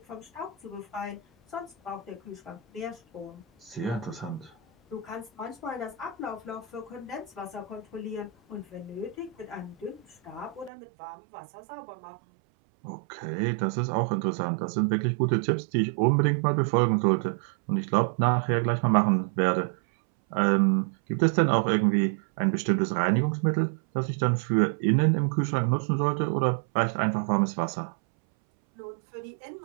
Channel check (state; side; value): drops out; left; at 10.7 s